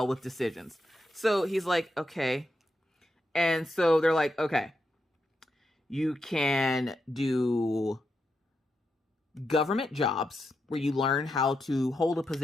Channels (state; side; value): normal; both; correlation 0.85